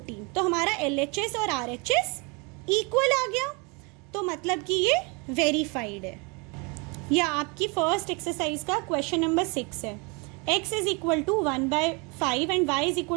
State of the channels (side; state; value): left; quieter; 30.5 dB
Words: तो हमारा LHS और RHS इक्वल आ गया, तो मतलब कि ये वेरीफाइड है। या आपकी फर्स्ट एक्सरसाइज का क्वेश्चन नंबर 6 है, x is equal to 1/5 and y is